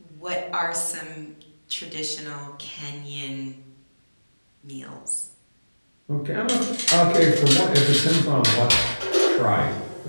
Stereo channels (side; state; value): both; inverted; correlation -1.00